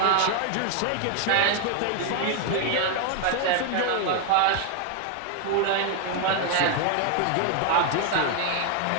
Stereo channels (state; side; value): different; both; correlation 0.00